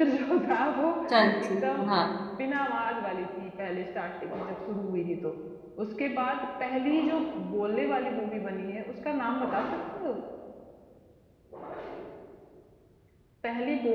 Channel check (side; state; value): both; identical; correlation 1.00